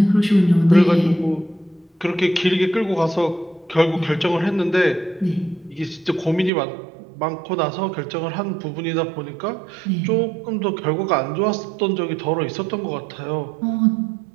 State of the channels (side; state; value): left; drops out; at 6.5 s